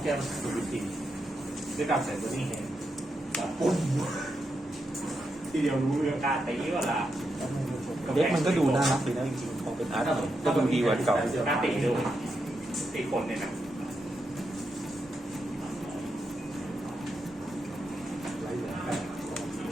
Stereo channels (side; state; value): both; normal; correlation 0.84